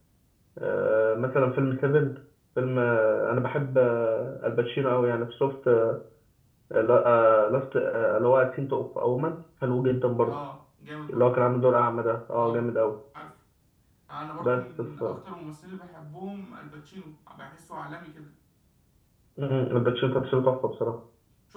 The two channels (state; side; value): identical; both; correlation 1.00